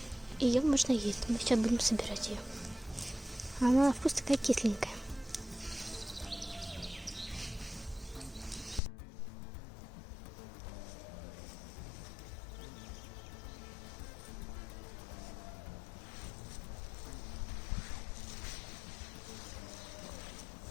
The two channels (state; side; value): drops out; right; at 8.8 s